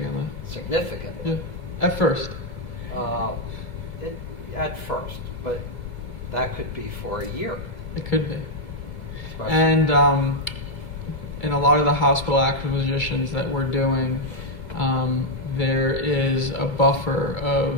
Significantly. Yeah. At first. At first, but that could be for a year. It could be. Especially. And in a lot of the hospital acquisitions that we're doing, there is a buffer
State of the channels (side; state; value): right; late; 2.3 ms